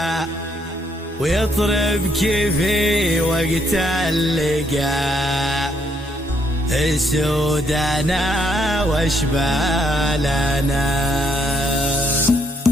ويطرب كيفي وقت اللقا. السودنا واشبالنا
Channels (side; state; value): both; normal; correlation 0.71